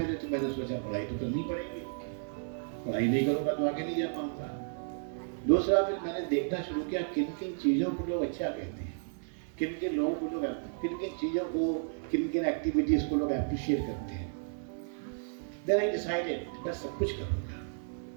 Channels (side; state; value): left; silent; digital silence